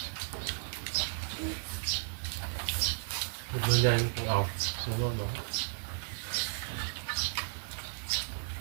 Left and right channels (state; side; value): silent; left; 55 dB below the other